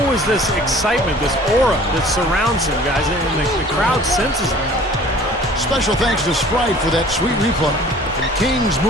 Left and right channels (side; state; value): both; normal; correlation 0.49